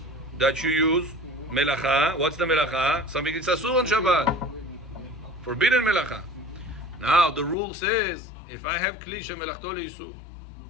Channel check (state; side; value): drops out; right; at 7.6 s